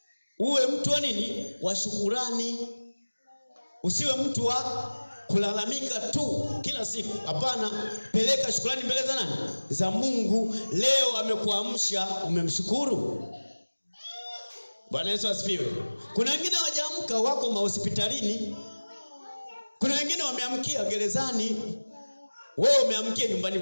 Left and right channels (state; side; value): inverted; both; correlation -1.00